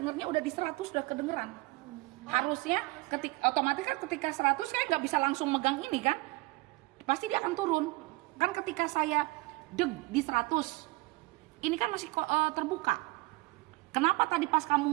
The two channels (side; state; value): left; quieter; 22.6 dB